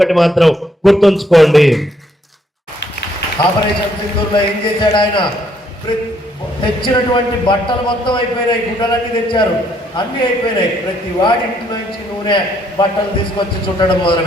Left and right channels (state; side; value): normal; both; correlation 0.69